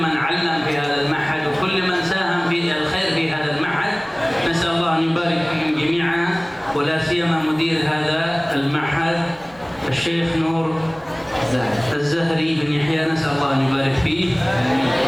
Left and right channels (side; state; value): right; noise; rumble, 29 dB below the sound